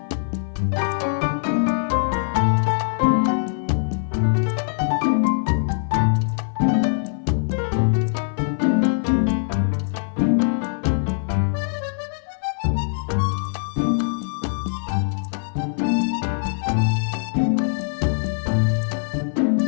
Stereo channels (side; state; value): right; silent; 55 dB below the other